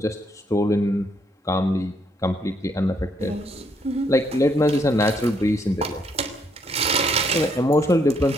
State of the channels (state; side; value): normal; both; correlation 0.72